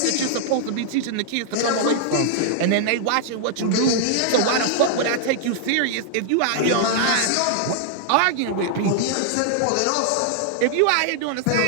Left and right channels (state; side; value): different; both; correlation -0.01